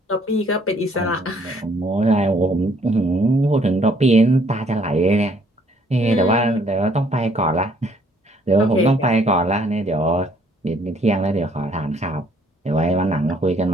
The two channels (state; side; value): normal; both; correlation 0.64